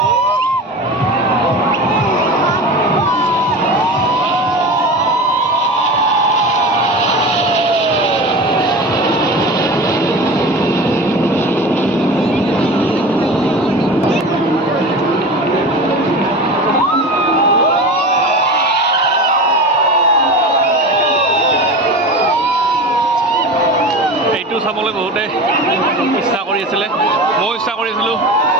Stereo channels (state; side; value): normal; both; correlation 0.31